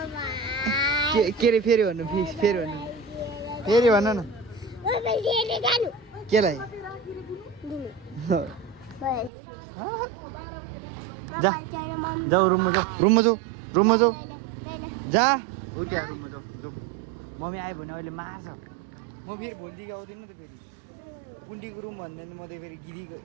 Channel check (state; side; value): drops out; left; at 9.3 s